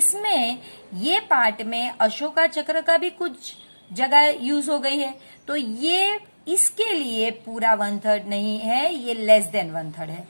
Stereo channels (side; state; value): both; inverted; correlation -1.00